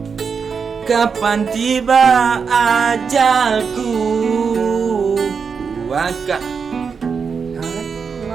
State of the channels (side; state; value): left; quieter; 5.8 dB